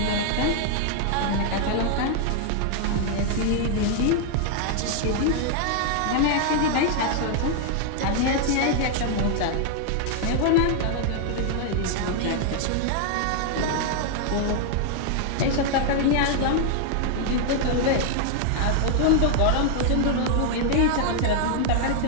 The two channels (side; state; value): both; different; correlation 0.00